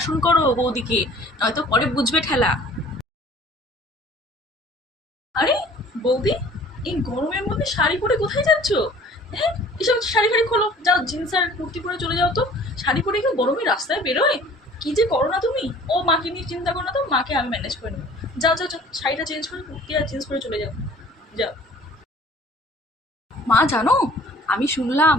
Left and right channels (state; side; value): normal; both; correlation 0.50